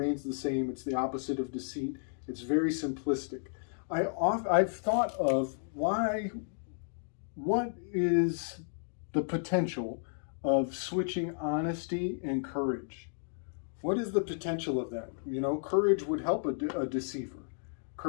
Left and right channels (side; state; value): right; silent; digital silence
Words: the same. It's the opposite of deceit. It's very simplistic. I've thought of what is the potential of switching honesty and courage? What is the potential of that? You know, courage would help a deceiver.